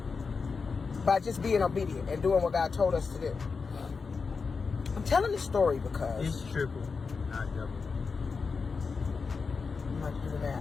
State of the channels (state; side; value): quieter; right; 4.9 dB